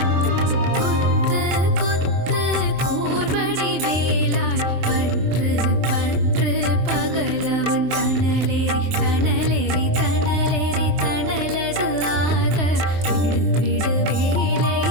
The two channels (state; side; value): late; left; 23 ms